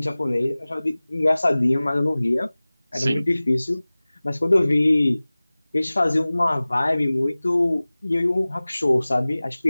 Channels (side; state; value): both; inverted; correlation -0.99